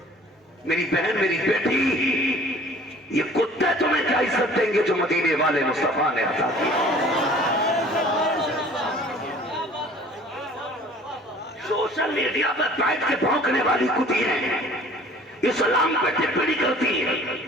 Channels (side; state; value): both; normal; correlation 0.50